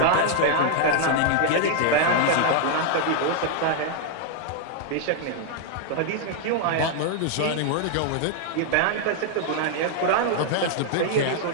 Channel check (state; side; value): different; both; correlation 0.00